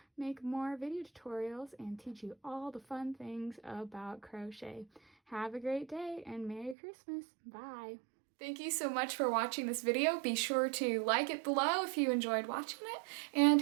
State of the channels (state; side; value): drops out; left; at 6.8 s